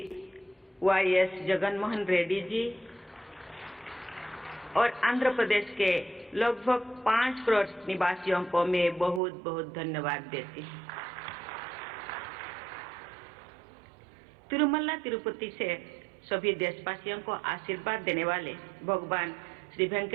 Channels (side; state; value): left; drops out; at 9.2 s